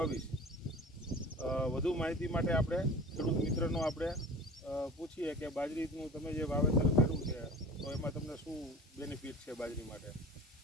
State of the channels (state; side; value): normal; both; correlation 0.38